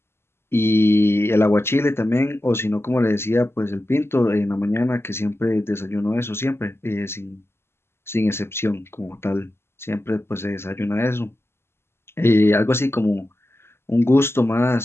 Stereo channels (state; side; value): late; right; 0.12 ms